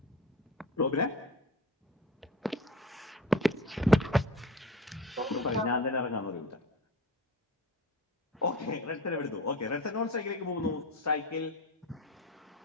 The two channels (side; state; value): both; normal; correlation 0.34